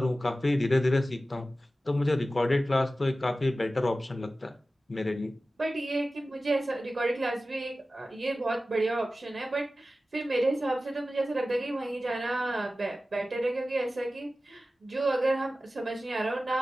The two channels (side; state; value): both; normal; correlation 0.95